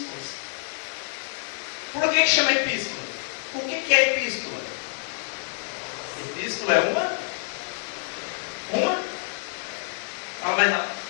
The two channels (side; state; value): right; silent; 59 dB below the other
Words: Por que chama epístola? O que é epístola? Epístola é uma? Fala mais não.